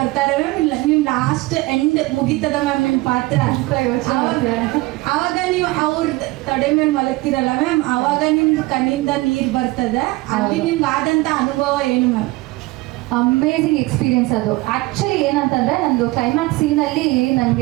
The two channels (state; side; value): quieter; left; 20.9 dB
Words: ಮ್ಯಾಮ್. ಇಲ್ಲ, ನೀವು ಲಾಸ್ಟ್ ಎಂಡ್ ಮುಗಿತದ ಮ್ಯಾಮ್ ನಿಮ್ಮ ಪಾತ್ರ. ಆವಾಗ ನೀವು ಅವ್ರ ತಡೆ ಮೇಲೆ ಮಲಗ್ತಿರಲ್ಲ ಮ್ಯಾಮ್, ಆವಾಗ ನಿಮ್ದು ಕಣ್ಣಿಂದ ನೀರು ಬರ್ತದೆ. ಅಲ್ಲಿ ನಿಮ್ಗೆ ಆದಂಥ ಅನುಭವ ಏನು ಮ್ಯಾಮ್? ಅಮೇಝಿಂಗ್ ಎಕ್ಸ್ಪೀರಿಯನ್ಸ್ ಅದು. ಆ್ಯಕ್ಚುಲಿ ಏನಂತಂದರೆ ನಂದು ಕ್ಲೈಮ್ಯಾಕ್ಸ್ ಸೀನಲ್ಲಿ